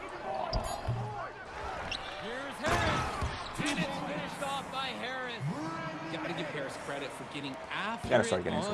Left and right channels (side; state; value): both; identical; correlation 1.00